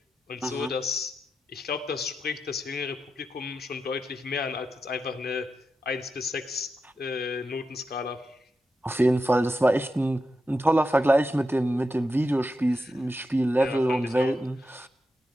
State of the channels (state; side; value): normal; both; correlation 0.88